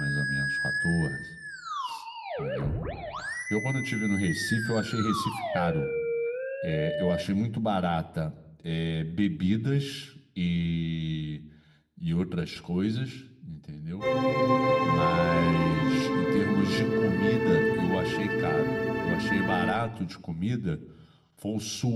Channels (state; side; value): identical; both; correlation 1.00